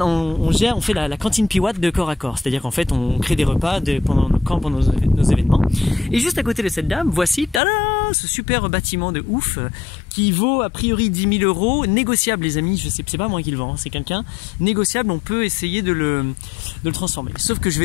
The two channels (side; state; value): right; drops out; at 7.6 s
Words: on fait la cantine Piwatt de corps à corps. C'est-à-dire qu'en fait, on crée des repas pendant nos événements. Et juste à côté de cette dame, voici, tada, ce super bâtiment de ouf qui vaut a priori 10 000 €. Négociable, les amis. Je sais, c'est pas moi qui le vends, c'est quelqu'un. Négociable, on peut essayer de le transformer. Sauf que je